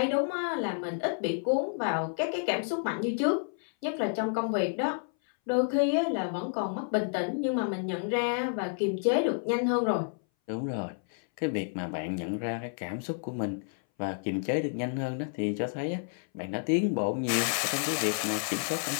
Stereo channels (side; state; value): right; silent; 58 dB below the other